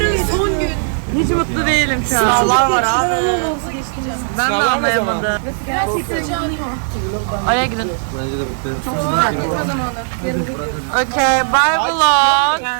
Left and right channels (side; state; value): left; silent; digital silence